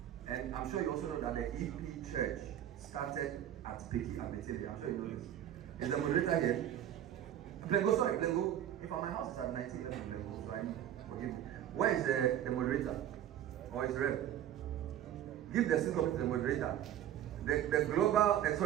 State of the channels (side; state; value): left; quieter; 11.1 dB